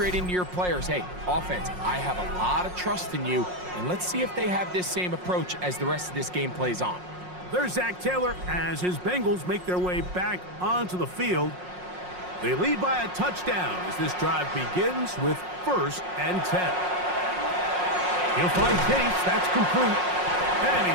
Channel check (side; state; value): left; late; 5.5 ms